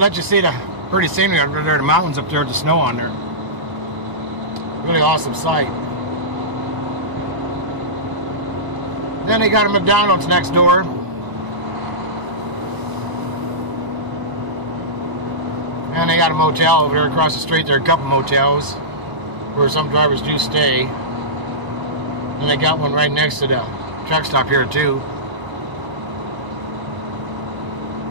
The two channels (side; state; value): left; late; 1.0 ms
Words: you see the pretty scenery out there, the mountains up there with the snow on there. Really awesome sight. Then they got a McDonald's next door. And they got a motel over there across the street. There are a couple motels where some drivers do stay. And they got one right next to the truck stop here too.